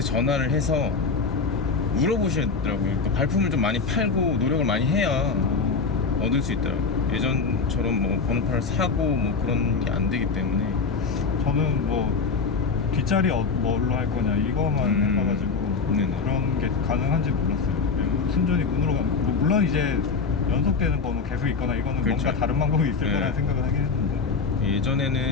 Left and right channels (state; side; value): quieter; right; 4.8 dB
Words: 해서 물어보시더라고요. 그러니까 발품을 좀 많이 팔고 노력을 많이 해야 얻을 수 있더라고요. 예전처럼 뭐 번호판을 사고 뭐 그런 게 안 되기 때문에. 저는 뭐 뒷자리 뭘로 할 거냐 이거만 해봐가지고 네네. 그런 게 가능한지 몰랐어요. 그리고 순전히 운으로 가는 뭐 물론 이제 연속되는 번호 계속 있거나 이거는 그렇죠. 뭔가 다른 방법이 있을 네. 거라는 생각을 하긴 했는데